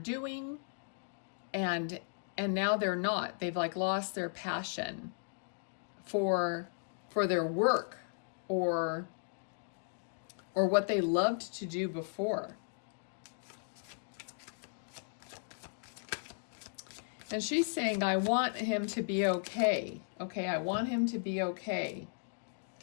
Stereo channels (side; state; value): right; silent; digital silence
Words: and now they're not. They've like lost their passion for their work, or what they loved to do before. And she's saying, I want him to be okay. Okay, I want him to be okay.